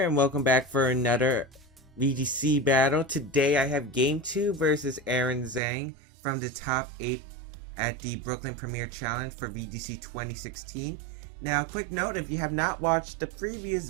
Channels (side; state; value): left; drops out; at 5.6 s